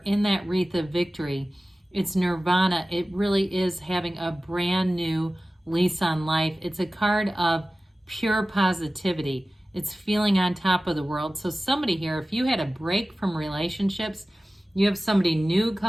in that wreath of victory. It's nirvana. It really is having a brand new lease on life. It's a card of pure positivity. It's feeling on top of the world. So somebody here, if you had a break from relationships, you have somebody new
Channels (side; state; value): both; normal; correlation 0.96